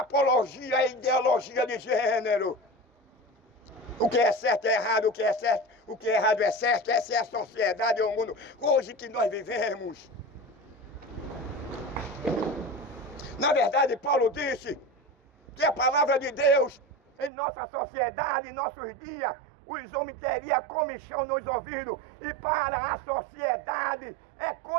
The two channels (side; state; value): left; drops out; at 17.3 s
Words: à ideologia de gênero. O que é certo é errado, o que é certo, o que é errado é certo. Essa é a sociedade, é o mundo hoje que nós vivemos. Na verdade, Paulo disse que a palavra de Deus em nossa sociedade, em nossos dias, os homens teriam comichão nos ouvidos. E para a sociedade é